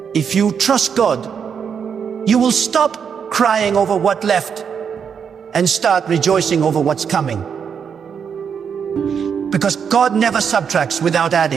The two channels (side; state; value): left; quieter; 7.0 dB